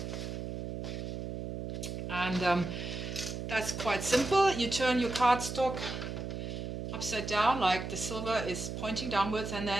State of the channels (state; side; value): noise; right; hum, 5 dB below the sound